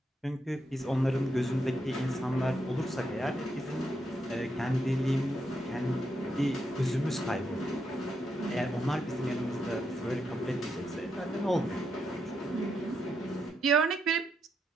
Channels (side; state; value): both; normal; correlation 0.81